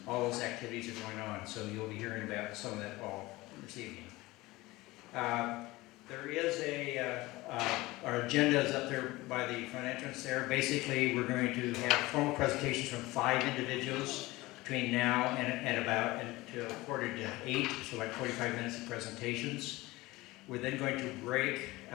all those activities are going on. So you'll be hearing about some of that all this evening. There is our agenda is up there by the front entrance there. Basically, we're going to have formal presentations from 5 individuals between now and about until 7:45, so like 45 minutes of presentations. We're then going to break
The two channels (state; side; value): quieter; right; 20.1 dB